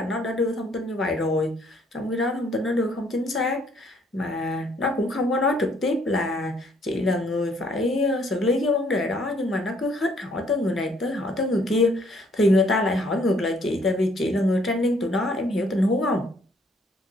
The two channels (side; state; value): both; normal; correlation 0.64